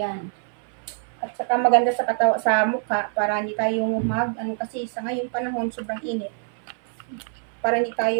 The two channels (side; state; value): left; silent; 58 dB below the other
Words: At saka maganda sa mukha para hindi tayo kasi sa ngayong panahon sobrang init. Para hindi